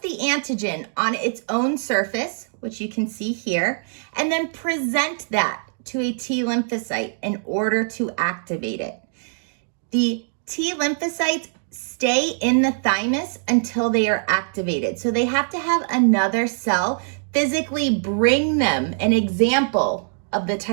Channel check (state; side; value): silent; left; digital silence